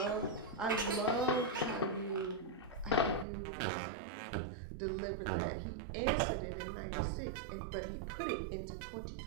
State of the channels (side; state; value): left; drops out; at 3.2 s